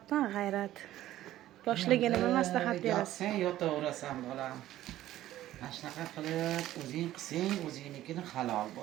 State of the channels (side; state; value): left; quieter; 13.9 dB